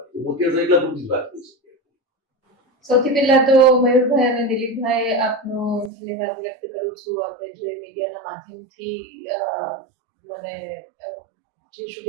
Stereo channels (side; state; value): left; drops out; at 5.9 s